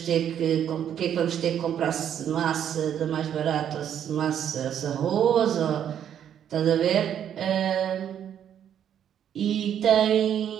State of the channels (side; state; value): left; quieter; 9.5 dB